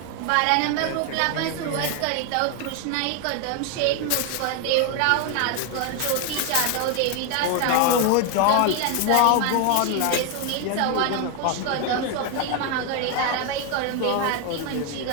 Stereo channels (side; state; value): both; different; correlation 0.01